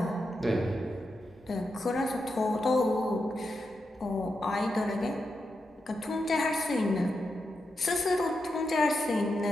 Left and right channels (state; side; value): normal; both; correlation 0.87